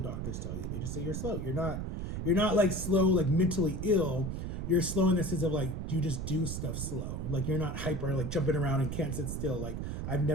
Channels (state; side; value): noise; right; rumble, 4 dB below the sound